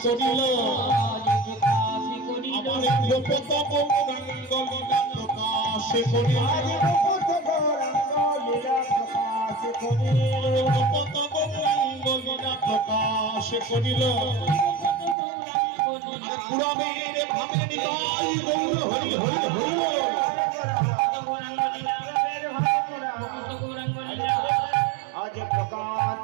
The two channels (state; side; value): drops out; left; at 15.2 s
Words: আমার গোপত গৌরাঙ্গ লীলা প্রকাশ করিল, গোপত গৌরাঙ্গ লীলা প্রকাশ করিল, পুরবীর ভাবে নিতাই গৌর হরি হরি হরি। আজ প্রকাশ